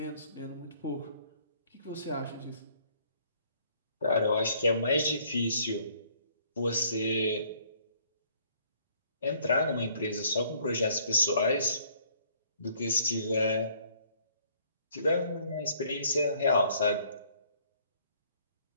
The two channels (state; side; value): inverted; both; correlation -0.62